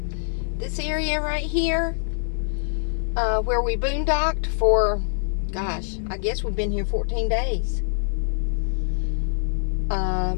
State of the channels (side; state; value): right; silent; 62 dB below the other